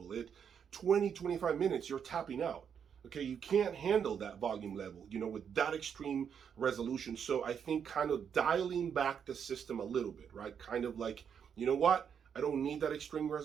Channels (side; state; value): left; quieter; 7.6 dB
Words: 20, 25 minutes, you're tapping out. Okay, you can't handle that volume level, you know, with that extreme resolution. So I think kind of dialing back the system a little bit, right? Kind of like, you know what? I don't need that extreme